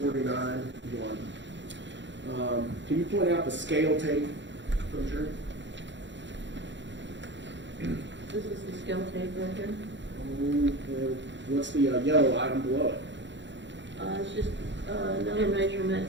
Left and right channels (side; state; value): left; late; 0.53 ms